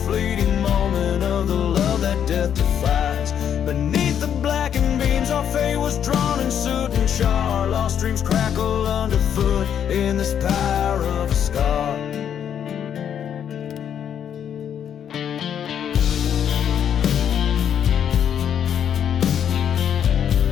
fleeting moment of the love that death defies. Beneath the blackened beams our fate was drawn in soot and char. Lost dreams crackle underfoot in this pyre of a scar.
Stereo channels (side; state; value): right; quieter; 8.9 dB